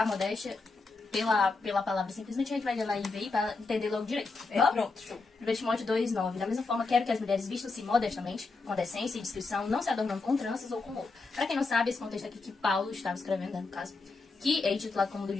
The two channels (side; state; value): right; quieter; 3.9 dB